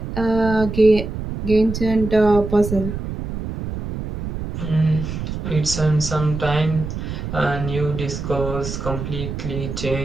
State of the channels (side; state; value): right; noise; rumble, 6 dB below the sound